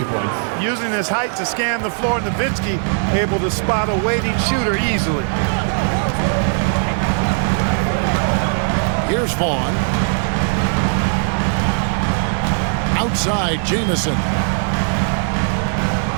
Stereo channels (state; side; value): silent; left; 56 dB below the other